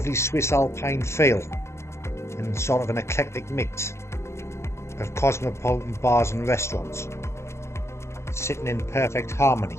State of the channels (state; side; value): late; right; 0.13 ms